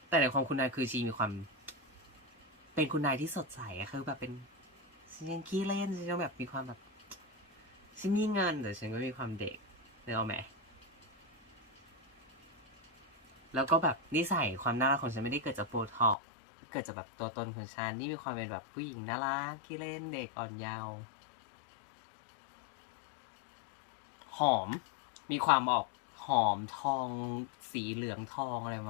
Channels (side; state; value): right; drops out; at 16.2 s